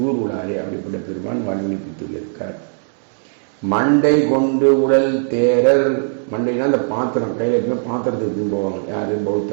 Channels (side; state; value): left; silent; 67 dB below the other